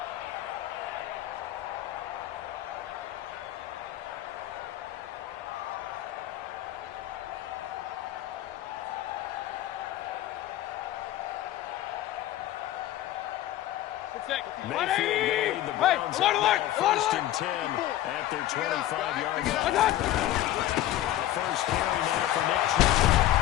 Mayfield going to lead the Browns up now, 1st and 10 at their 25-yard line. The first carry now for Nick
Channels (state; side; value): quieter; right; 13.9 dB